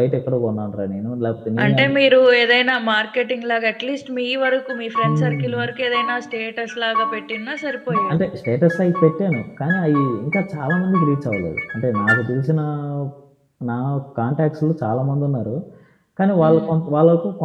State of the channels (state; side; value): identical; both; correlation 1.00